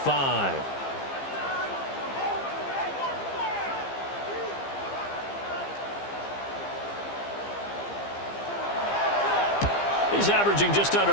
He's averaging just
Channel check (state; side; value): late; right; 15 ms